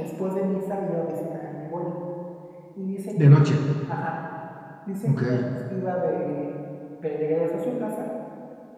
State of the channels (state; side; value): identical; both; correlation 1.00